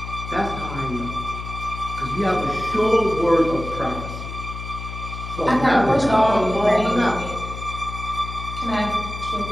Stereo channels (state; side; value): noise; left; hum, 9 dB below the sound